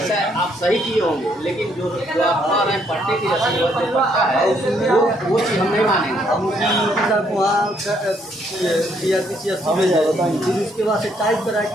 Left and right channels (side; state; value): both; normal; correlation 0.70